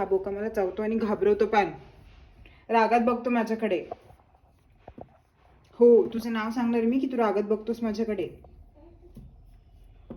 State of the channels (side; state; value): both; identical; correlation 1.00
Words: बोका मला चावतो आणि घाबरवतो, पण रागात बघतो माझ्याकडे. हो, तुझं नाव सांगणार मी की तू रागात बघतोस माझ्याकडे.